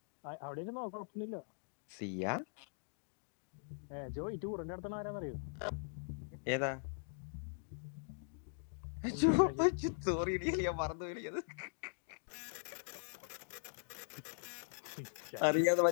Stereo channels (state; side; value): silent; right; digital silence